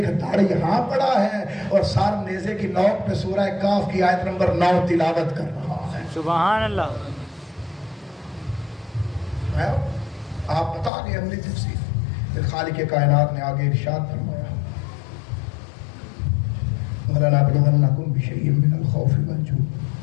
دھڑ یہاں پڑا ہے اور سار نیزے کی نوک پہ سورہ کاف کی آیت نمبر 9 تلاوت کر رہا ہے۔ سبحان اللہ۔ آپ بتا دیں عملی تفسیر۔ پھر خالق کائنات نے آگے ارشاد فرمایا وَلَنَبْلُوَنَّكُمْ بِشَيْءٍ مِّنَ الْخَوْفِ وَالْجُوعِ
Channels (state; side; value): drops out; right; at 10.9 s